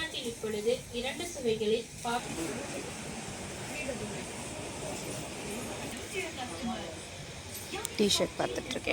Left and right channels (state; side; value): identical; both; correlation 1.00